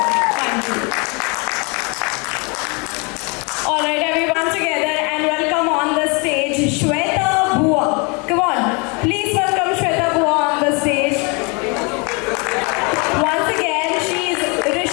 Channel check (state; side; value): quieter; right; 31.1 dB